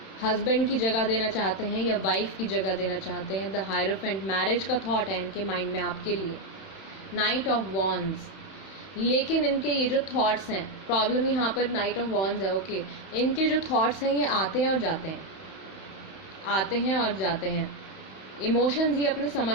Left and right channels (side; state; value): right; late; 31 ms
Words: हस्बैंड की जगह देना चाहते हैं या वाइफ की जगह देना चाहते हैं। द हायरोफेंट, मैरिज का थॉट है इनके माइंड में आपके लिए। नाइट ऑफ वॉन्ड्स, लेकिन इनके ये जो थॉट्स हैं, प्रॉब्लम यहाँ पर नाइट ऑफ वॉन्ड्स है। ओके, इनके जो थॉट्स हैं ये आते हैं और जाते हैं, आते हैं और जाते हैं। इमोशंस ये अपने समझ